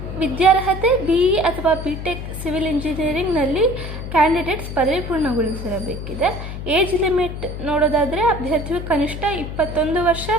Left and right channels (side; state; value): left; noise; hum, 8 dB below the sound